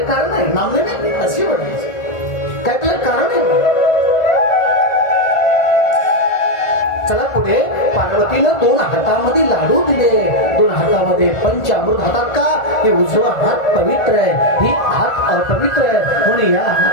कारण नाही. नामनामी अशी वडायची काय त्याला कारण आहे. चला पुढे. पार्वतीनं 2 हातामध्ये लाडू दिले. 2 हातामध्ये पंचामृत. हातात का? हे उजवा हात पवित्र आहे, ही हात अपवित्र आहे. म्हणून या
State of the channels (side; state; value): right; late; 1.4 ms